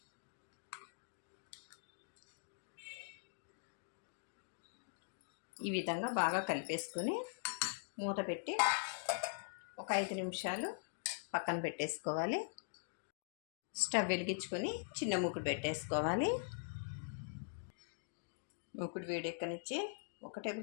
ఈ విధంగా బాగా కలిపేసుకుని మూత పెట్టి ఒక 5 నిమిషాలు పక్కన పెట్టేసుకోవాలి. స్టవ్ వెలిగించుకొని చిన్న మూకుడు పెట్టేసుకోవాలి. మూకుడు వేడెక్కనిచ్చి 1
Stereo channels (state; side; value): silent; right; digital silence